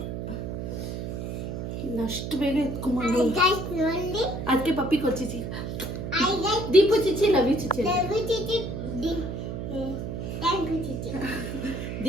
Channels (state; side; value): noise; right; hum, 5 dB below the sound